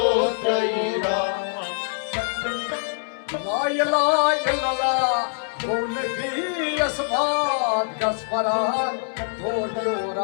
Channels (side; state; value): right; silent; digital silence